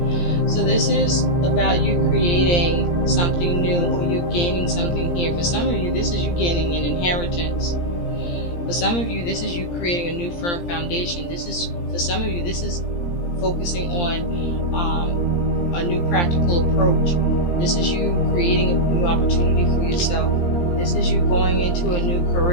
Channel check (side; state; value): right; late; 17 ms